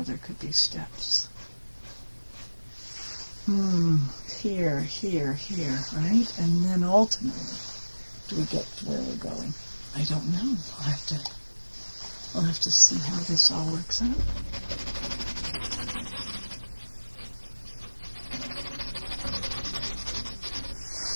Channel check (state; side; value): inverted; both; correlation -1.00